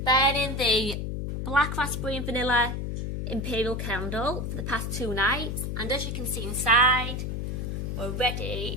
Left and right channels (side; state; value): left; noise; hum, 3 dB below the sound